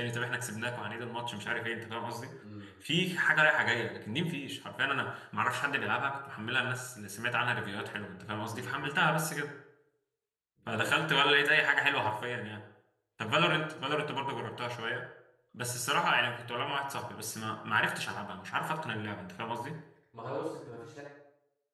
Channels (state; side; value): identical; both; correlation 1.00